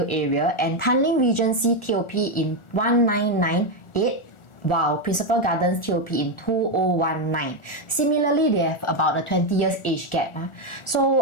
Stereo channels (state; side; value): late; right; 1.4 ms